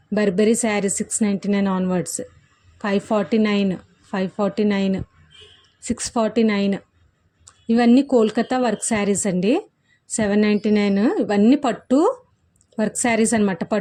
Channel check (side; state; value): both; identical; correlation 1.00